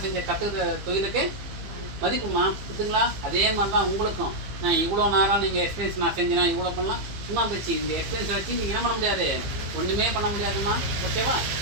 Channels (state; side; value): late; left; 15 ms